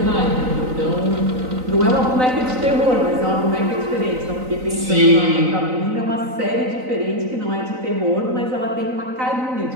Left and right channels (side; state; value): left; late; 3.9 ms